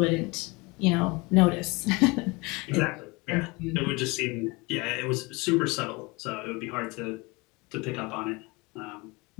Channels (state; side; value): quieter; right; 25.7 dB